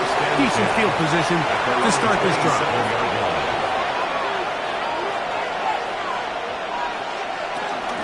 Decent field position to start this drive.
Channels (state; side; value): identical; both; correlation 1.00